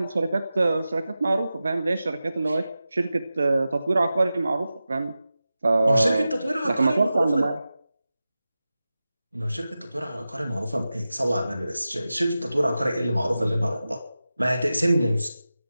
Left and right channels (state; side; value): inverted; both; correlation -0.94